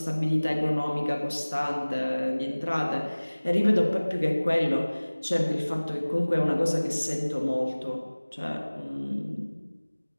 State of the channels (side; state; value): both; inverted; correlation -1.00